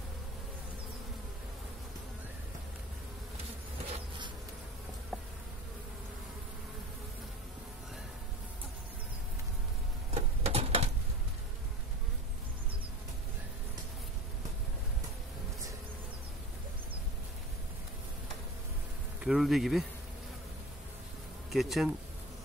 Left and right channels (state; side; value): normal; both; correlation 0.36